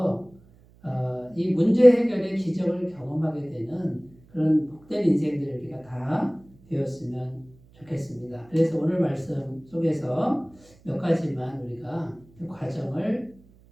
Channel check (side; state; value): right; noise; hum, 27 dB below the sound